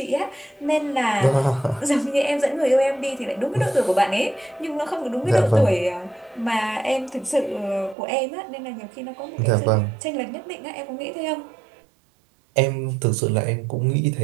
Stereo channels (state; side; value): drops out; left; at 8.0 s